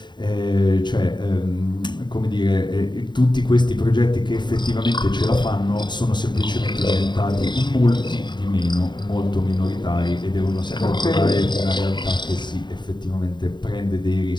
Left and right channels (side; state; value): right; late; 0.22 ms